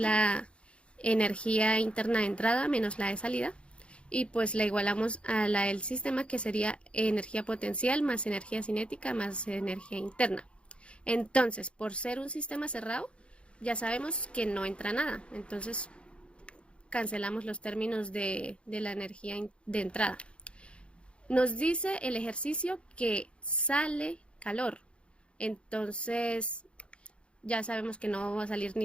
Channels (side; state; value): right; late; 0.058 ms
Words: energía interna de entrada menos la de salida y pues la igualamos a la del sistema, que sería energía potencial más energía cinética más energía interna. Entonces, por ser un sistema cerrado, ya sabemos que no entra nada. Entonces, cancelamos los términos de la energía de entrada. Nos dice el ejercicio que sale calor. Entonces, ya sabemos que no va a salir ni